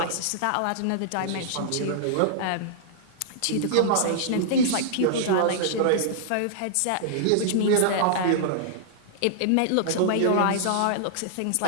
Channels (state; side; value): different; both; correlation -0.01